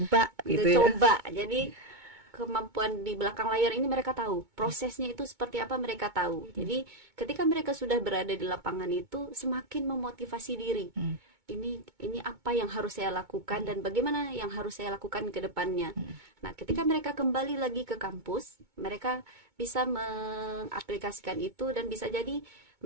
gitu ya. Coba. Jadi kemampuan di belakang layar ini mereka tahu, prosesnya itu seperti apa mereka tahu. Jadi ketika mereka sudah berada di lapangan itu semakin memotivasi diri. Ini apa yang harus saya lakukan dan bagaimana yang harus saya lakukan ke depannya. Nah, ketika mereka kembali lagi ke kampus, mereka bisa mengaplikasikan itu dan bisa jadi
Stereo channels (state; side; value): late; left; 2.2 ms